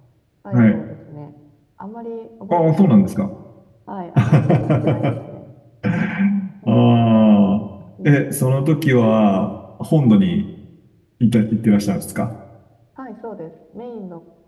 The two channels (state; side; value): identical; both; correlation 1.00